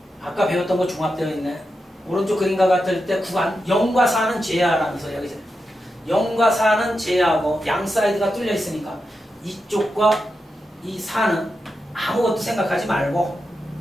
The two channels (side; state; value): both; normal; correlation 0.88